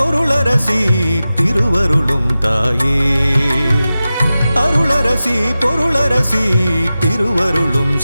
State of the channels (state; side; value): inverted; both; correlation -0.95